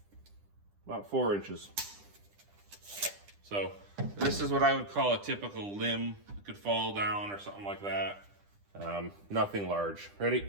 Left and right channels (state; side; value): late; left; 10 ms